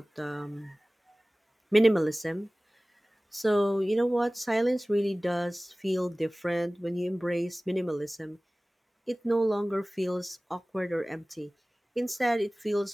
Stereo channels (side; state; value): both; normal; correlation 0.98